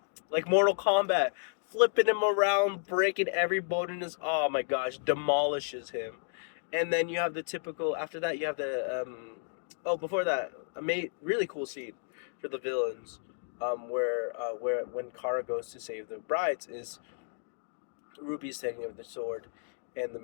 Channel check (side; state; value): right; silent; digital silence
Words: Mortal Kombat, flipping him around, breaking every bone in his. Oh my gosh, demolishes him. And then you have the typical. After that, you have the oh, before that, a really cool scene for the villains, where when Kara goes to save the brides is Ruby's taking over the sword, and the